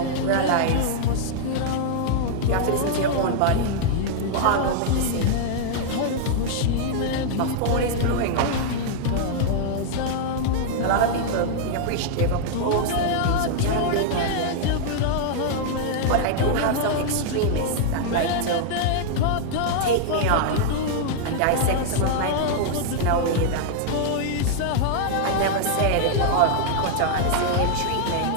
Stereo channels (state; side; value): different; both; correlation -0.01